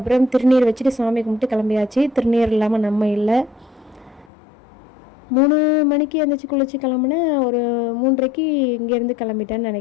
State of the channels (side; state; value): right; drops out; at 4.3 s